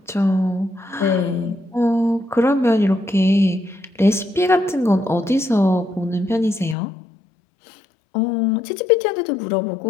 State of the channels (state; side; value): drops out; right; at 6.8 s